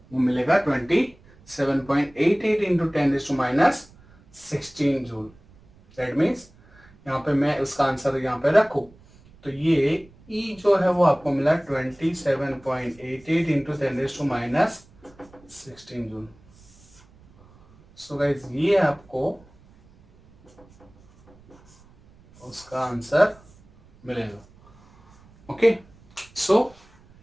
वो मिलेगा 27.88 इंटू 10⁻16 जूल। दैट मीन्स यहाँ पे मैं उसका आंसर यहाँ पे रखूं तो ये ई जो है वो आपको मिला 27.88 इंटू 10⁻16 जूल। सो गाइज ये आपको उसका आंसर मिलेगा। Okay, so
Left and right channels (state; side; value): noise; right; rumble, 27 dB below the sound